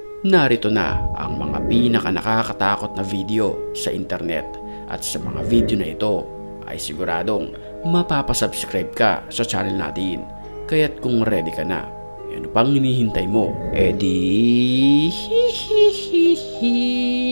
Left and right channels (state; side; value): inverted; both; correlation -1.00